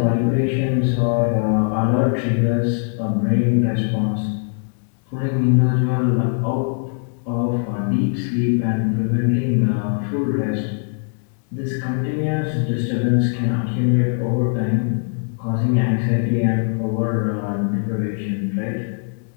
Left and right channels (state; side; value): silent; right; 61 dB below the other